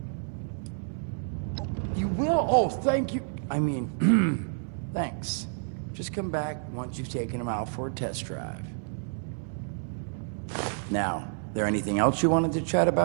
You will? Oh, thank you. I mean, thanks. Just come back once you've taken them out for a test drive. Now, there anything else you wanted to chat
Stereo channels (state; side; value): silent; left; digital silence